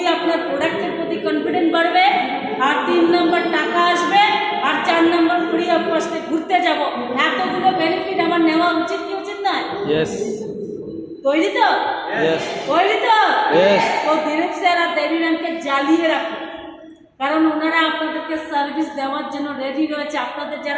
আপনার প্রোডাক্টের প্রতি কনফিডেন্ট বাড়বে, আর 3 নম্বর টাকা আসবে, আর 4 নম্বর ফ্রি অফ কস্টে ঘুরতে যাব। এতগুলো বেনিফিট আমার নেওয়া উচিত কি উচিত নয়? ইয়েস। তৈরি তো? ইয়েস। তৈরি তো? ইয়েস। তো দিলীপ স্যার আর দেবী ম্যামকে জ্বালিয়ে রাখুন, কারণ ওনারা আপনাদেরকে সার্ভিস দেওয়ার জন্য রেডি রয়েছে। আপনাদের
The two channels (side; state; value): both; identical; correlation 1.00